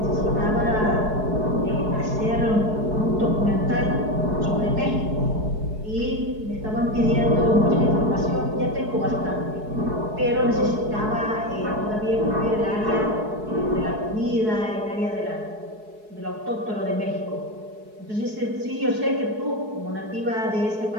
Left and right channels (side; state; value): left; late; 4.7 ms